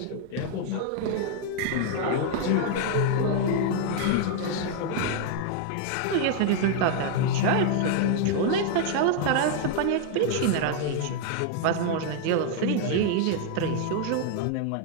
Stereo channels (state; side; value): different; both; correlation 0.00